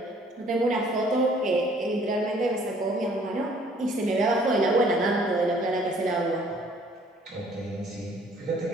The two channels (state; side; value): normal; both; correlation 0.58